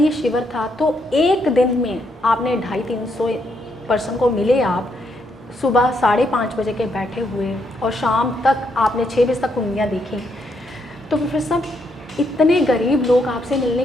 शिविर था तो एक दिन में आपने 250-300 पर्सन को मिले। आप सुबह 5:30 बजे के बैठे हुए और शाम तक आपने 6 बजे तक कुंडलियाँ देखी। तो प्रोफेसर इतने गरीब लोग आपसे मिलने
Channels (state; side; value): normal; both; correlation 0.76